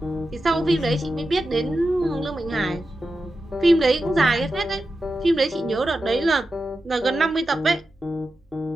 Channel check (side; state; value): both; normal; correlation 0.91